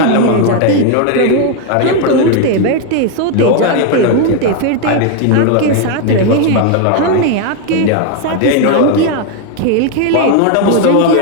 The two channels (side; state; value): both; different; correlation 0.01